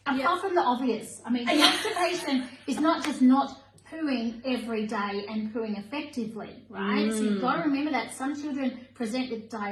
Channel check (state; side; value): identical; both; correlation 1.00